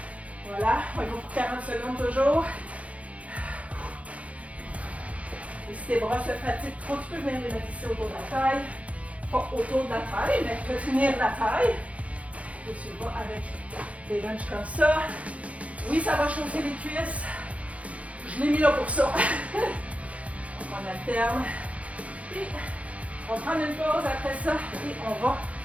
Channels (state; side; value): late; left; 0.065 ms